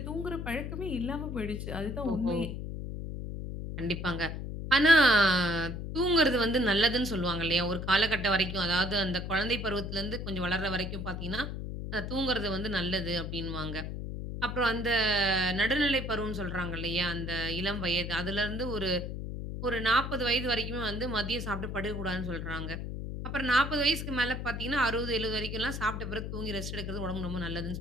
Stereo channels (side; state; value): left; noise; hum, 5 dB below the sound